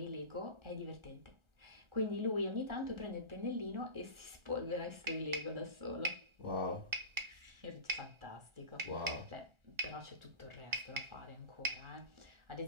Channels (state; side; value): late; left; 1.4 ms